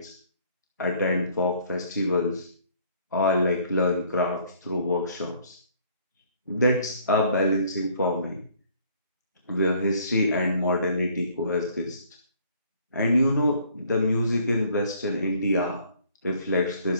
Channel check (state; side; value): inverted; both; correlation -0.60